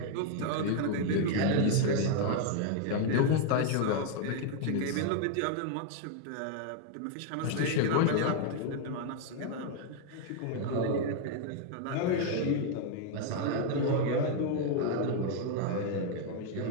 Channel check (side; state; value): both; different; correlation 0.00